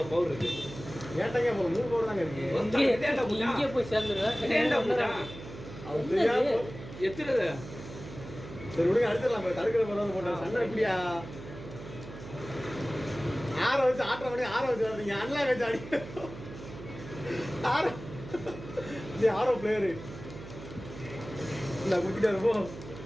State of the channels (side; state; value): right; noise; hum, 13 dB below the sound